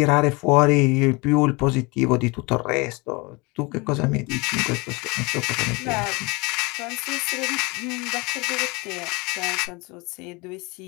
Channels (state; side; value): quieter; right; 26.8 dB